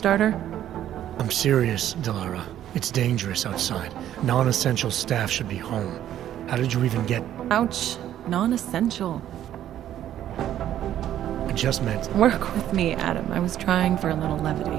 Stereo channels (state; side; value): quieter; left; 11.6 dB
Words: I'm serious, Delara. It's dangerous outside. Non-essential staff should be home. How did you even get... Ouch. Non-essential. I just meant... Work with me, Adam. I was trying for a little